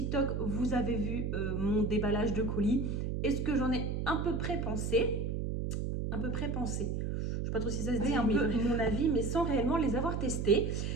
vous avez vu mon déballage de colis et ce que j'en ai à peu près pensé. Je ne sais pas trop si ça se dit, un peu mon avis, mais sans réellement les avoir testés.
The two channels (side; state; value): right; noise; hum, 1 dB below the sound